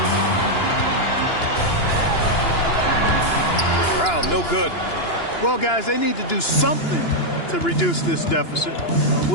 Brown, no good. Well, guys, they need to do something to reduce this deficit.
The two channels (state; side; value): late; right; 2.9 ms